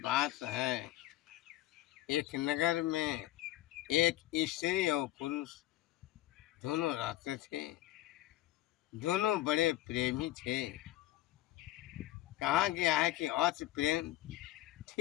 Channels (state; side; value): quieter; right; 15.2 dB